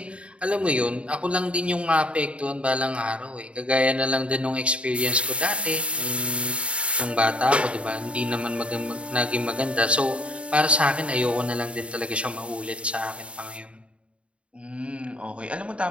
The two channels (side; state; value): left; late; 0.060 ms